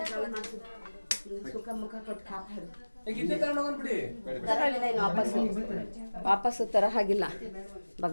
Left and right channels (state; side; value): inverted; both; correlation -1.00